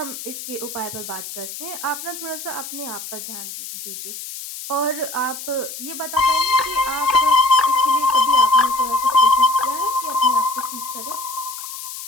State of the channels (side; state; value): left; noise; hiss, 10 dB below the sound